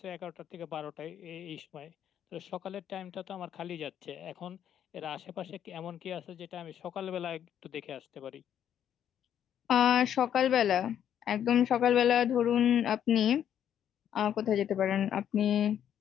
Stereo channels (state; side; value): quieter; right; 9.8 dB